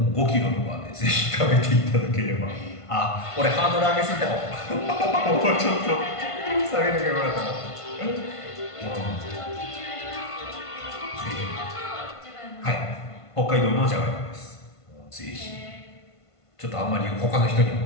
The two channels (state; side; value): late; right; 1.5 ms